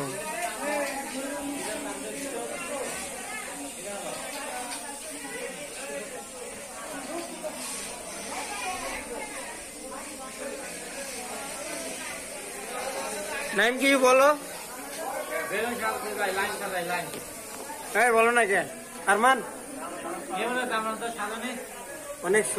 নাইম কি বলো? হ্যাঁ বলো না কে আরমান? অনেক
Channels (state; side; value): identical; both; correlation 1.00